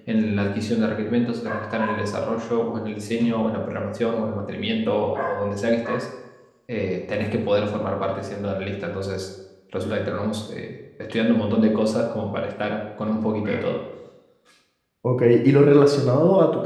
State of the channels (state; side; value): identical; both; correlation 1.00